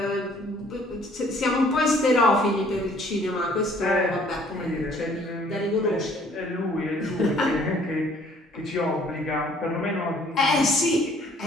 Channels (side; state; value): both; normal; correlation 0.59